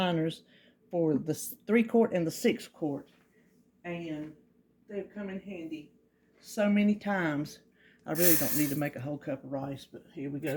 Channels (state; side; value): identical; both; correlation 1.00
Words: for the 3-quart and the 6-quart. And they've come in handy so many times. I really don't need to make a whole cup of rice, but here we